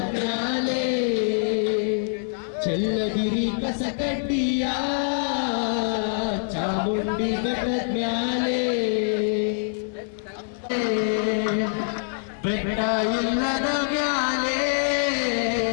ಮ್ಯಾಲೆ ಚೆಲ್ಲದಿರಿ ಕಸಕಟ್ಟಿಯ ಚಾಮುಂಡಿ ಬೆಟ್ಟದ ಮ್ಯಾಲೆ ಬೆಟ್ಟ ಇಲ್ಲದ ಮ್ಯಾಲೆ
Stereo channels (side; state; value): right; silent; digital silence